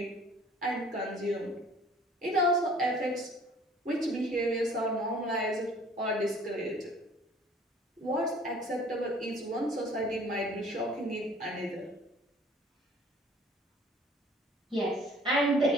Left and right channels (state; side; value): normal; both; correlation 0.52